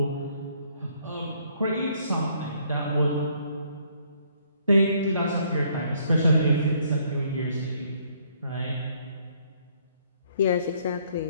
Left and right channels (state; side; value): inverted; both; correlation -0.66